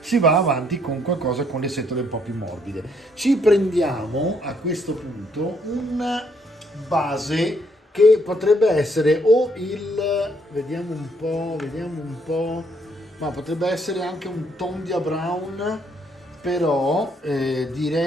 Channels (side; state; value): both; normal; correlation 0.70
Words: si va avanti con qualcosa con le setole un po' più morbide. Ci prendiamo a questo punto una base che potrebbe essere o vediamo un po', ma potrebbe essere anche un Tondia Brown, però